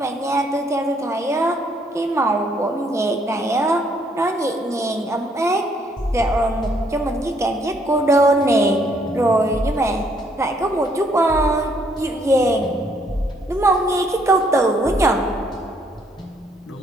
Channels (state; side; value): normal; both; correlation 0.68